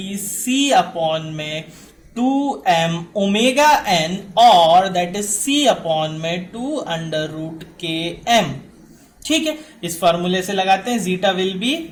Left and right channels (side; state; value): both; identical; correlation 1.00